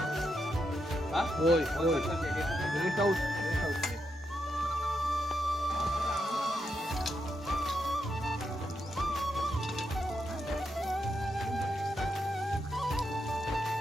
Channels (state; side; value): normal; both; correlation 0.83